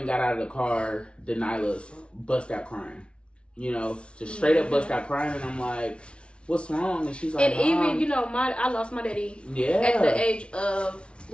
got out of the car, Denila's bust out crying. You know, just straight up bust out crying. And I'm like, what's wrong? And she's like, and even, you know, I lost my daddy at the age of,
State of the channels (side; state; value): right; late; 0.058 ms